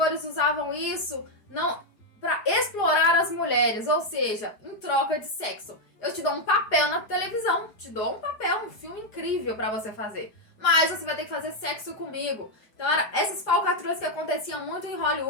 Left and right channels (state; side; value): late; right; 4.9 ms